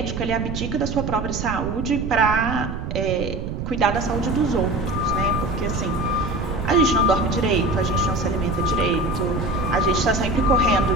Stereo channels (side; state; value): right; noise; rumble, 5 dB below the sound